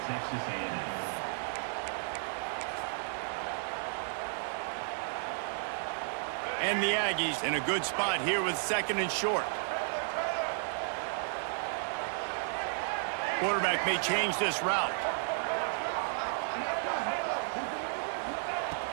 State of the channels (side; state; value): left; silent; digital silence